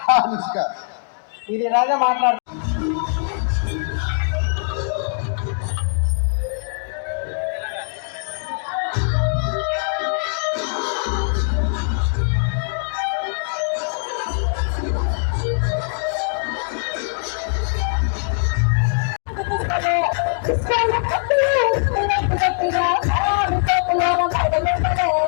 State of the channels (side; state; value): right; silent; digital silence